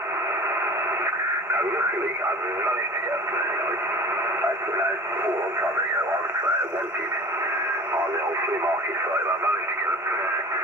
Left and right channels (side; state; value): both; normal; correlation 0.39